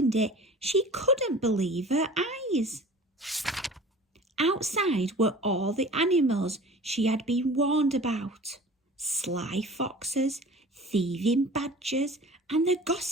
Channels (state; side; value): normal; both; correlation 0.42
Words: it, she couldn't believe her eyes. Outside were all the animals she had been warned about. Sly foxes, thieving badgers, and the